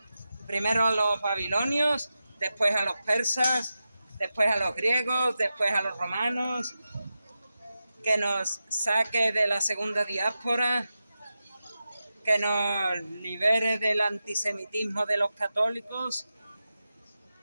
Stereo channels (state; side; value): inverted; both; correlation -0.91